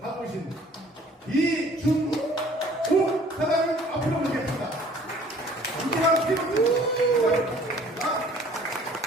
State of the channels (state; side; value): normal; both; correlation 0.54